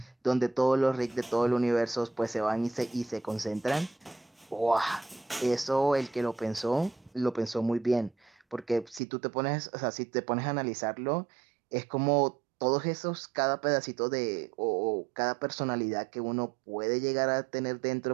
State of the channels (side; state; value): left; drops out; at 9.0 s